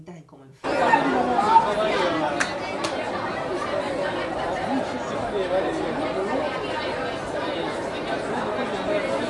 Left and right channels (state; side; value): identical; both; correlation 1.00